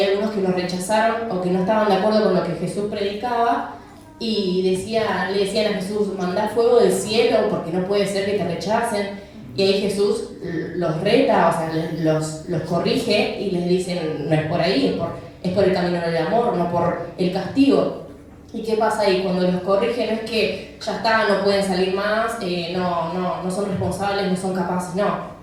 algunos que lo rechazaron o que no estaban de acuerdo con lo que Jesús predicaba y le decían a Jesús, mandá fuego del cielo porque no puede ser que te rechacen. Y ahí Jesús los reta, o sea, los corrige y les dice, no es por ahí, es por el camino del amor, no por el castigo. ¿Y qué pasa ahí? Cuando los corrige no es que ya está, no pueden salir más, no son responsables, no son capaces, no.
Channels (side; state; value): both; identical; correlation 1.00